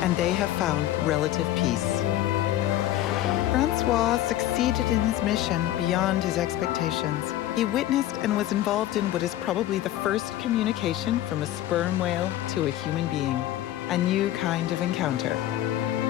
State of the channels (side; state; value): right; quieter; 13.5 dB